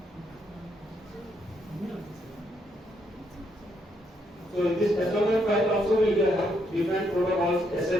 So in this SMF file also we will have different protocols:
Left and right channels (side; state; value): both; normal; correlation 0.75